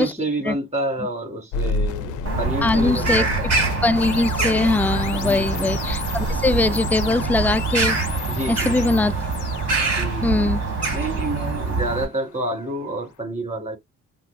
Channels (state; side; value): normal; both; correlation 0.52